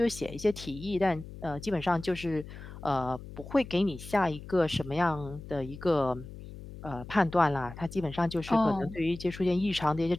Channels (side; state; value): left; noise; hum, 13 dB below the sound